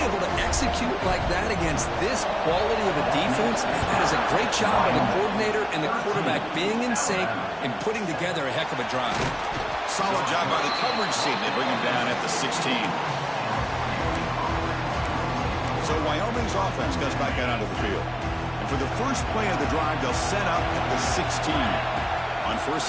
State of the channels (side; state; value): both; identical; correlation 1.00